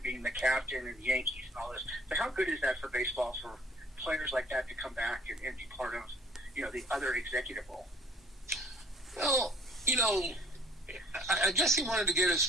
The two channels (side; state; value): both; normal; correlation 0.56